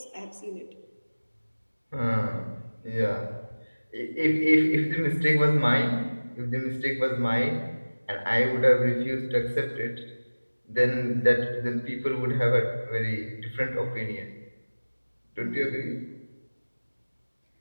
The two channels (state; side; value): inverted; both; correlation -1.00